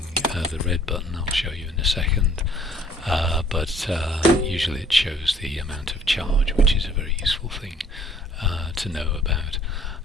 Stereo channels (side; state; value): both; normal; correlation 0.58